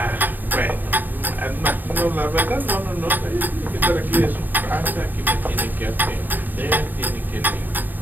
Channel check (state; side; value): late; left; 0.091 ms